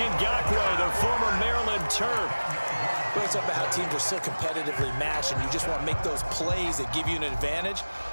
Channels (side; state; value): both; inverted; correlation -1.00